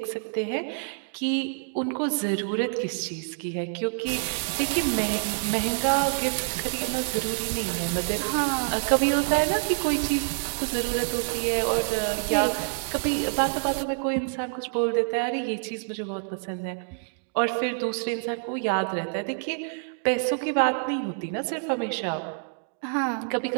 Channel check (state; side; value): silent; left; digital silence